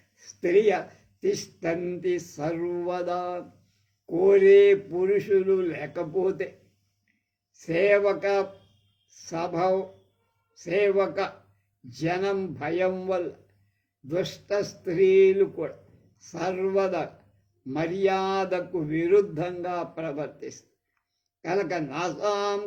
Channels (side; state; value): both; identical; correlation 1.00